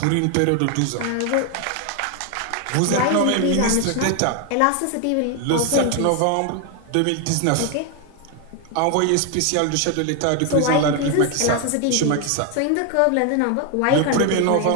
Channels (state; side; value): different; both; correlation 0.01